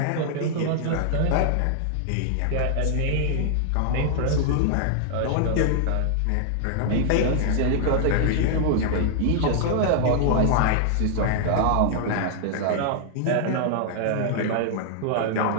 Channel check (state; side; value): different; both; correlation -0.01